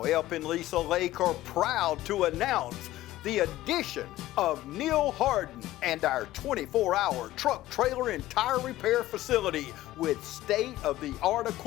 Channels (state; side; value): quieter; right; 15.5 dB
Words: Elp and Lisa Lake are proud to announce the addition of Neil Harden and our 24-hour truck, trailer, and tire repair facility with state-of-the-art